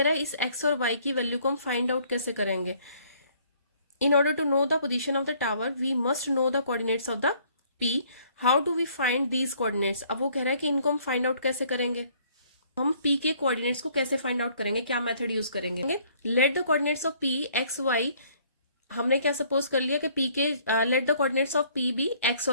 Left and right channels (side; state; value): both; inverted; correlation -0.61